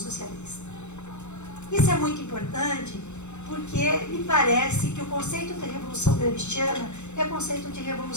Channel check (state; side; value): late; right; 0.83 ms